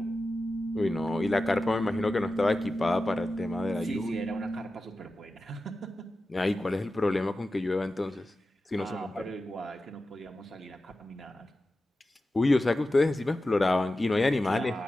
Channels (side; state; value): both; normal; correlation 0.93